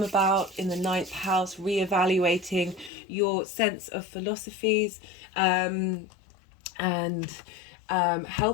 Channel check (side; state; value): right; drops out; at 2.9 s